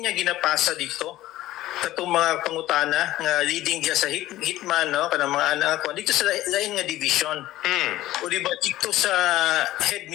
ginapasa dito katong mga pangutana nga leading diya sa hitman no kanang mga anak ko dito sa lain nga division. O di ba dito sa head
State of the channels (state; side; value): quieter; right; 15.6 dB